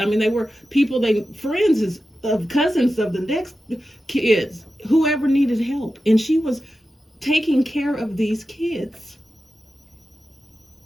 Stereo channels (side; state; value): both; normal; correlation 0.92